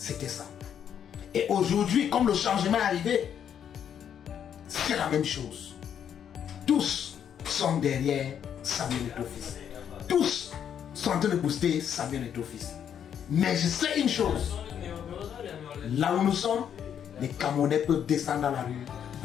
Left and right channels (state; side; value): quieter; right; 8.8 dB